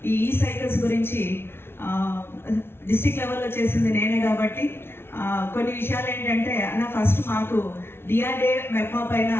ఈ సైకిల్స్ గురించి డిస్ట్రిక్ట్ లెవెల్లో చేసింది నేనే కాబట్టి కొన్ని విషయాలు ఏంటంటే, అన్న ఫస్ట్ మాకు డిఆర్డే మెప్మా పైన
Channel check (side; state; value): right; late; 0.12 ms